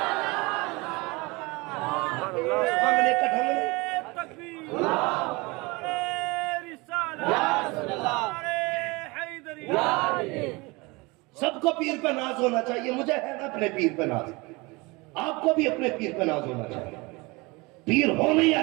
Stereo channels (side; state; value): left; quieter; 25.1 dB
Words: تکبیر نعرہ رسالت نعرہ حیدری. سب کو پیر پہ ناز ہونا چاہیے. مجھے ہے نا اپنے پیر پہ ناز, آپ کو بھی اپنے پیر پہ ناز ہونا چاہیے. پیر ہو نہیں